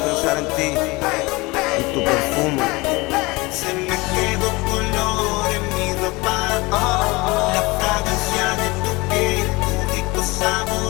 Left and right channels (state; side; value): quieter; right; 23.6 dB